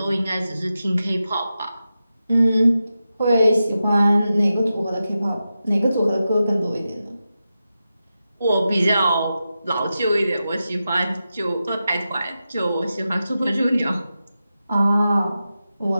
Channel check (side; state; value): both; inverted; correlation -0.91